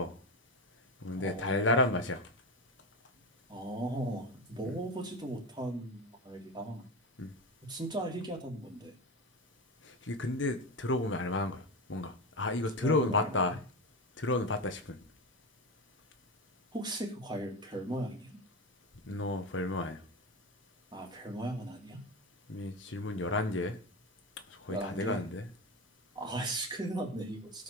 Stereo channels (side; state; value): both; normal; correlation 0.19